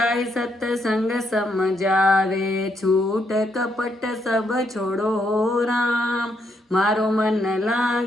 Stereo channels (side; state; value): both; normal; correlation 0.76